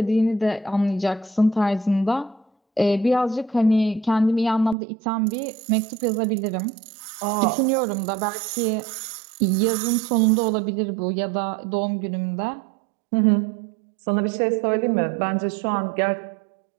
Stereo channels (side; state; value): left; drops out; at 4.8 s